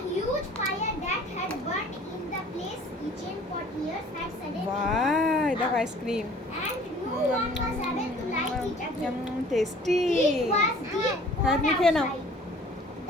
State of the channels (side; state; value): both; normal; correlation 0.51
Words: huge fire that had burnt in the place kitchen for years had suddenly বাহ, দেখো ice cream, and no one was able to light it again. Tasty. It was deep হ্যাঁ, cold তুমি খেয়ে নাও। outside.